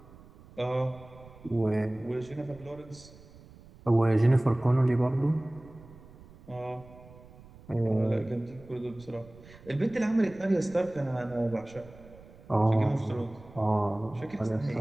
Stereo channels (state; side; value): noise; right; rumble, 21 dB below the sound